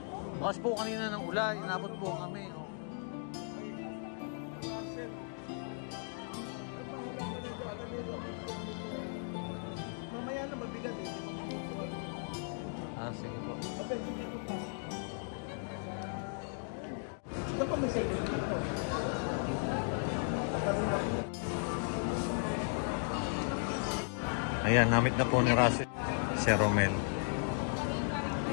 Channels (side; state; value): right; silent; 54 dB below the other